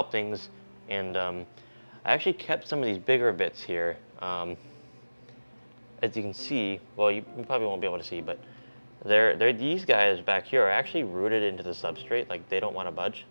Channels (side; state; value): both; inverted; correlation -1.00